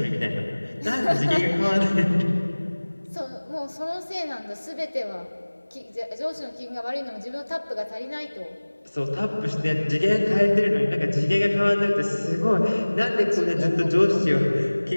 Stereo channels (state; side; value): inverted; both; correlation -1.00